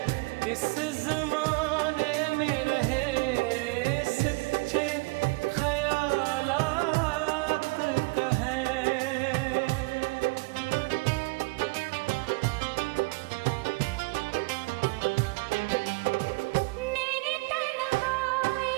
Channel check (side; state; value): left; quieter; 26.8 dB